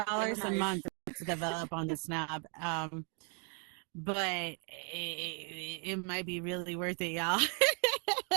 a Nice. month to develop on the Snap. But it might be really worth it, y'all.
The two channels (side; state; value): left; quieter; 39.1 dB